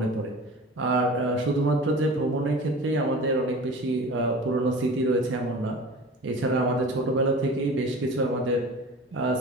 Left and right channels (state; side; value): normal; both; correlation 0.38